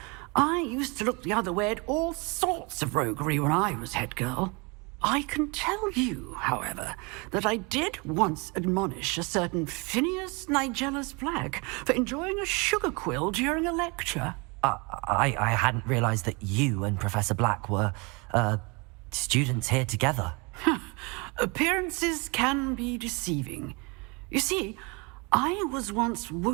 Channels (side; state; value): left; quieter; 29.5 dB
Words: I used to look the other way at all sorts of roguery when I was head girl. I can tell you, however, that I did once admonish a certain Phineas Nigellus Black for enjoying a sugar quill during a lecture. I hadn't realized that you and Professor Black were, students here together. Appearances can be deceiving. You see, I was once